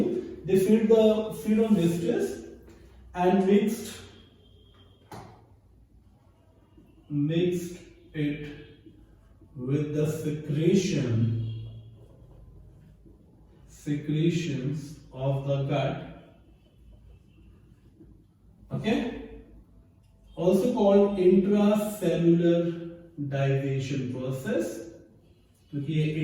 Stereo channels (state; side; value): identical; both; correlation 1.00